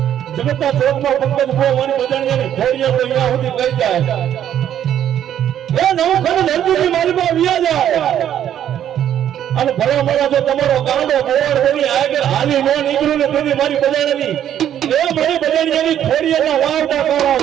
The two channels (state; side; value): quieter; left; 10.4 dB